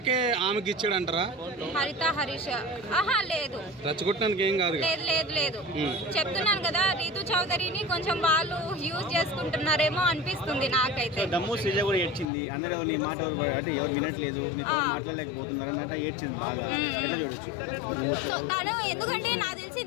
ఆమెకి ఇచ్చాడంటారా? హరిత హరీష్ లేదు, రెచ్చగొట్టినందుకు ఏం కాదు. లేదు చెప్తున్నాను కదా, రీతు చౌదరిని కొంచెం వాళ్ళు యూజ్ చేసుకుంటున్నారేమో అనిపిస్తుంది నాకైతే. దమ్ము శ్రీజ కూడా ఏడ్చింది, అందరూ నీ మాట అంటే ఎవరు వినట్లేదు, నీతో మాట్లాడలేకపోతున్నారు అన్నట్టు ఏడ్చింది బాగా. ఎట్లా చూడొచ్చు? సో తను ఎందుకంటే నాకు తెలిసి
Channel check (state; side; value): drops out; right; at 12.2 s